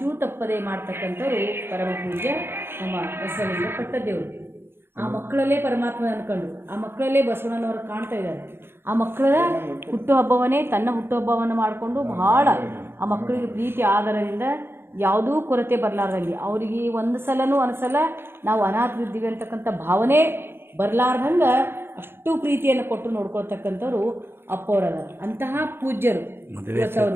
ತಪ್ಪದೆ ಮಾಡ್ತಕ್ಕಂಥವ್ರು ಪರಮ ಪೂಜ್ಯ ನಮ್ಮ ಬಸವಲಿಂಗ ಪಟ್ಟದೇವರು. ಆ ಮಕ್ಕಳಲ್ಲೇ ಪರಮಾತ್ಮ ಅಂದ್ಕೊಂಡು ಆ ಮಕ್ಕಳಲ್ಲೇ ಬಸವಣ್ಣನವರು ಕಾಣ್ತಾ ಇದ್ದಾರೆ. ಆ ಮಕ್ಕಳ ಹುಟ್ಟುಹಬ್ಬವನ್ನೇ ತನ್ನ ಹುಟ್ಟುಹಬ್ಬವನ್ನು ಮಾಡಿಕೊಂಡು ಬಹಳ ಆ ಮಕ್ಕಳಿಗೆ ಪ್ರೀತಿ ಆಧಾರದಿಂದ ಯಾವುದೂ ಕೊರತೆ ಬರಲಾರ್ದಂಗೆ, ಅವರಿಗೆ ಒಂದು ಸಲನೂ ಅನಿಸಲ್ಲ ನಾವು ಅನಾಥರಿದ್ದೀವಿ ಅಂತಕ್ಕಂಥ ಭಾವನೆ ಬರಲಾರ್ದಂಗೆ ಅಷ್ಟು ಪ್ರೀತಿಯನ್ನು ಕೊಟ್ಟು ನೋಡ್ಕೊಳ್ತಕ್ಕಂಥವ್ರು ಅಪ್ಪವರದ. ಅಂತಹ ಪೂಜ್ಯರು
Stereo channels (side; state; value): left; late; 0.11 ms